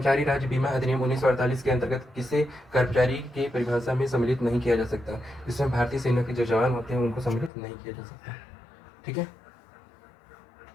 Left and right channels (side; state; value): right; drops out; at 7.5 s